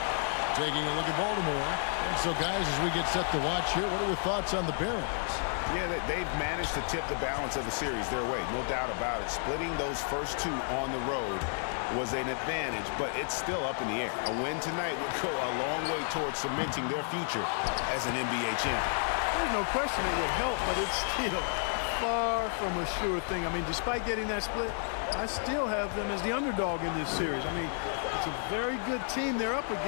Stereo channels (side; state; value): right; silent; 57 dB below the other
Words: Taking a look at Baltimore. And so, guys, as we get set to watch here, what are your thoughts on the Barons? Yeah, they've managed to tip the balance of the series their way, no doubt about it. Splitting those first two on the road was an advantage, but it's still up in the air. A win tonight would go a long way towards cementing their future as an NBA champion. There's no question it would help, but it's still far from a sure thing. I mean, despite getting that split, I still have them as the underdog in this series. I mean, it's a very good team they're up